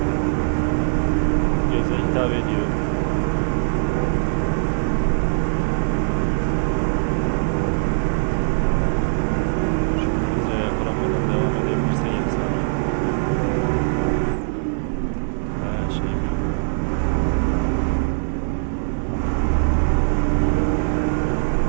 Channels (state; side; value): silent; left; 65 dB below the other